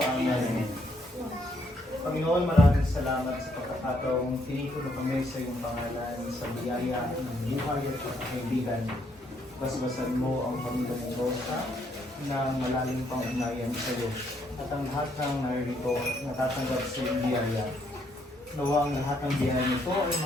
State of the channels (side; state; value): both; normal; correlation 0.72